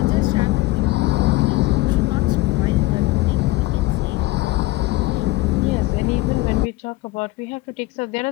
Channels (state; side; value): quieter; right; 19.1 dB